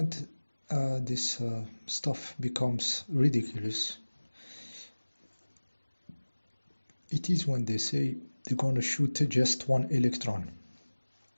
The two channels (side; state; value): both; inverted; correlation -1.00